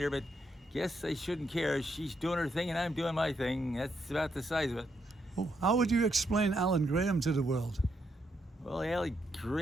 her, but guess I shouldn't care. She's doing her thing and I'm doing my thing. That's about the size of it. Oh, how would you explain Alan Graham to the world? Well, Allie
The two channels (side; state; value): both; normal; correlation 0.78